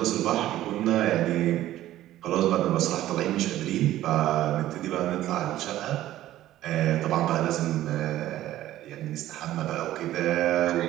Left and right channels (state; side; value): quieter; left; 14.0 dB